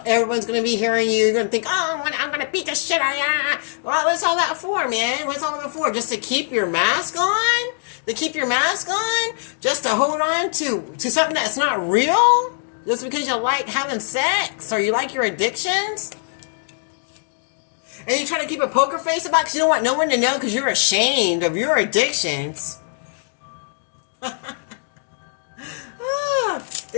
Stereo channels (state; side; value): silent; right; digital silence